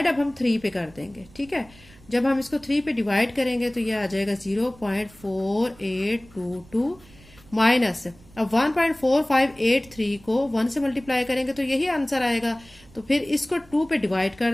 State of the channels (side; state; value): right; noise; rumble, 25 dB below the sound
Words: अब हम 3 पे कर देंगे। ठीक है, जब हम इसको 3 पे डिवाइड करेंगे तो ये आ जाएगा 0.4822 माइनस अब 1.4583 को 1 से मल्टीप्लाई करेंगे तो यही आंसर आएगा। तो फिर इसको 2 पे डिवाइड